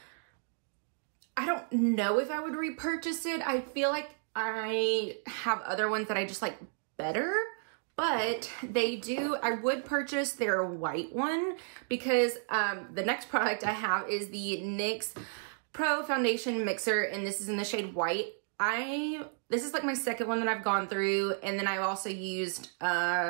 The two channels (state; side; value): silent; left; 56 dB below the other